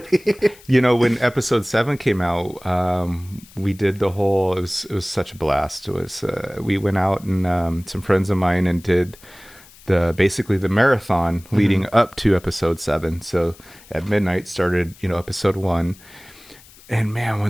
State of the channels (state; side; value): noise; left; hiss, 24 dB below the sound